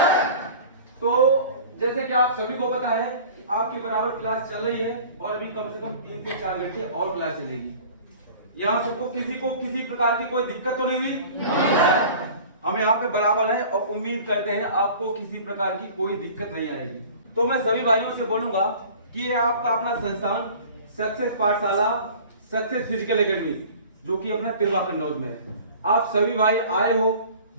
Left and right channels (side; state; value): both; inverted; correlation -0.44